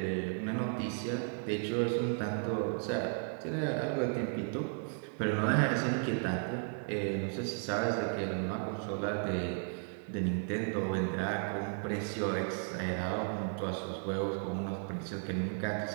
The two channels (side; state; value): left; silent; 55 dB below the other